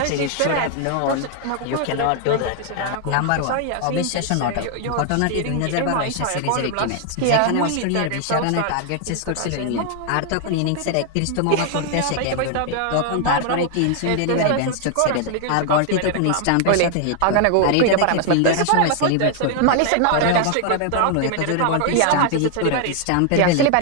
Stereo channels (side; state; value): both; different; correlation 0.00